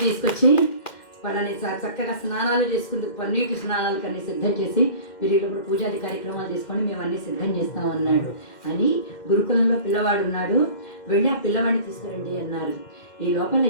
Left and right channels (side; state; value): right; late; 2.1 ms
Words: తీసుకొచ్చి వాళ్ళని చక్కగా స్నానాలు చేసుకుందుకు పన్నీటి స్నానాలు కన్నీ సిద్ధం చేసి, మీరు ఇప్పుడు పూజాది కార్యక్రమాలు చేసుకొని మేము అన్నీ సిద్ధం చేస్తాం అన్నాడు. అని గురుకులంలో పిల్లవాడు ఉన్నాడు, వెళ్ళి ఆ పిల్లవాడిని తీసుకురండి అన్నారు. ఈ లోపల